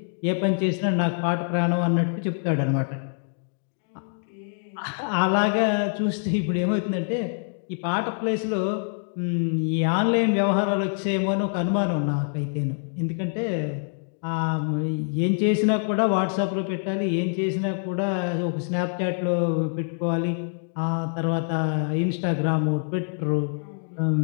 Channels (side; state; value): right; silent; 62 dB below the other